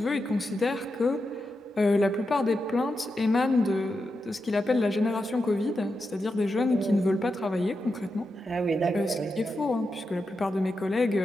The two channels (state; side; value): normal; both; correlation 0.88